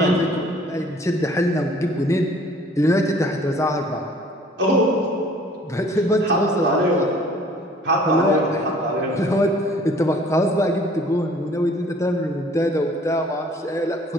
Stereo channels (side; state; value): both; normal; correlation 0.54